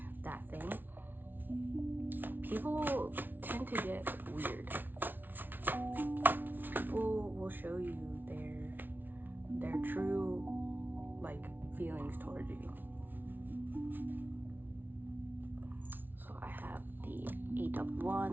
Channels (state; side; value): late; left; 0.091 ms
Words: that thing, people tend to get weird. People will show you their true, like, feelings towards you. So I have the 8 of